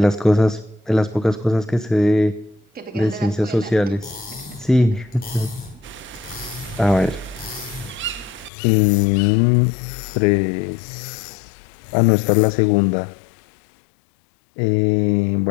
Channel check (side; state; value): right; drops out; at 8.5 s